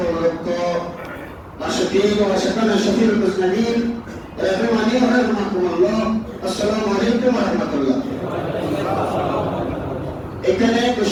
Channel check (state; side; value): identical; both; correlation 1.00